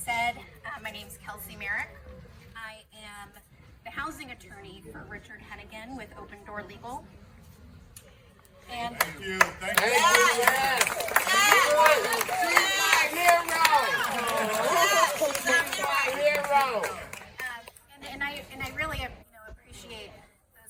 my name's Kelsey Merrick. I am the housing attorney for Richard Henegan with Open Door Legal. And Thank you. Thank you. And I really appreciate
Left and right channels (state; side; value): identical; both; correlation 1.00